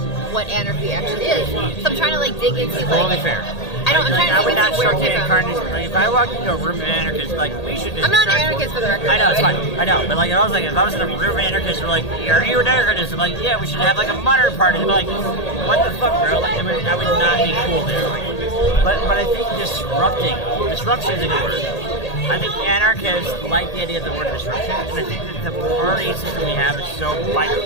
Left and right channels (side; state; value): right; late; 1.8 ms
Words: anarchy actually is. So I'm trying to like dig into like. Totally fair. I'm trying to dig into where it came from. Like, if I walked into a room of anarchists, like we should. I'm not an anarchist for the record. I know it's fine. I know, but like if I was in a room of anarchists, we're like, "Are you an anarchist?" I'm like, "Yeah, we should have like a modern party." They're like, "What the fuck, bro?" Like that would not be cool there. Like, but I think disruption is a good word. I think anarchists like the idea of the word disruption, and I think that the party system we have is so